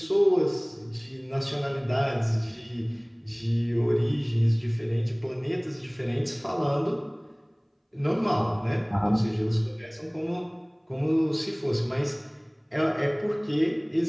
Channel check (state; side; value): identical; both; correlation 1.00